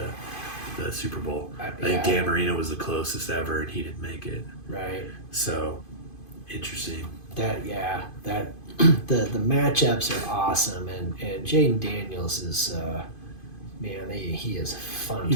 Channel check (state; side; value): late; right; 2.5 ms